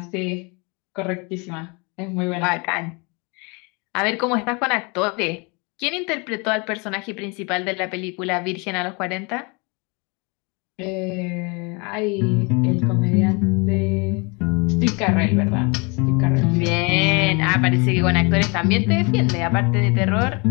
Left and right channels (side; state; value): right; quieter; 30.3 dB